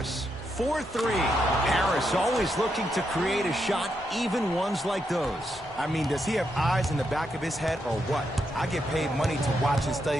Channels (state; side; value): normal; both; correlation 0.81